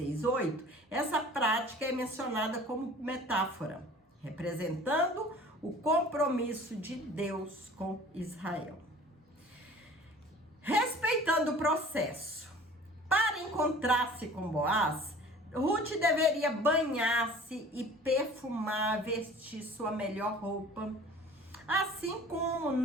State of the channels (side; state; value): both; normal; correlation 0.46